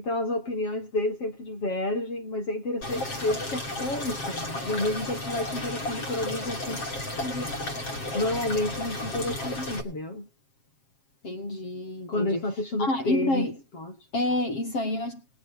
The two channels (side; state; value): right; late; 7.4 ms